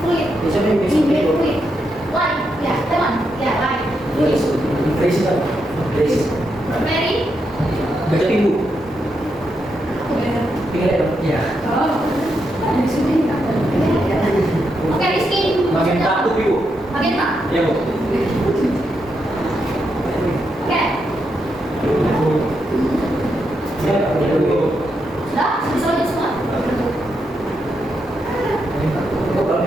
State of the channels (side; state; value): both; normal; correlation 0.82